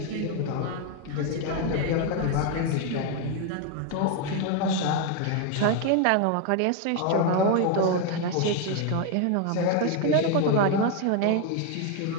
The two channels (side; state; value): both; different; correlation 0.01